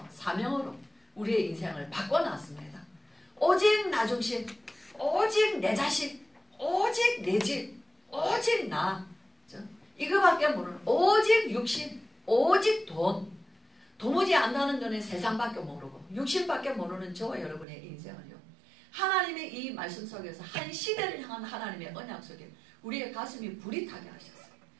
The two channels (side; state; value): left; drops out; at 17.7 s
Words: 사명으로 우리의 인생을 바꿔놨습니다. 오직 나 중심, 오직 내 자식, 오직 내 집, 오직 나 이거밖에 모르는 오직 육신, 오직 돈 도무지 안다는 거는 세상밖에 모르고 육신밖에 모르는 저와 여러분의 인생을요 하나님의 이 말씀 속에서 한 시대를 향한 하나님의 언약 속에 우리의 가슴이 불이 타게 하셨어요.